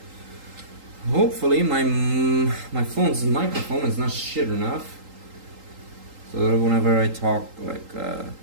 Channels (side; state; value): left; late; 3.8 ms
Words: Hopefully my phone's microphone is not shit enough, so that whenever I talk, like